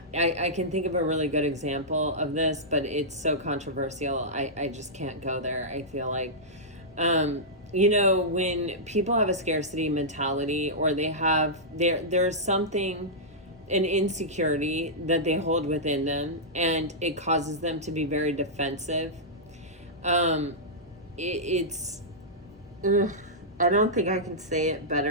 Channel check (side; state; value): both; normal; correlation -0.12